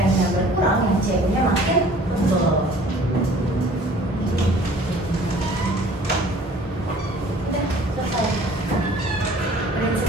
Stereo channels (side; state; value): both; normal; correlation 0.51